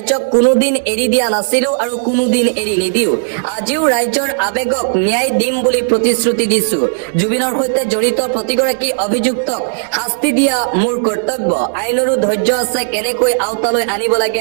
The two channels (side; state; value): left; silent; digital silence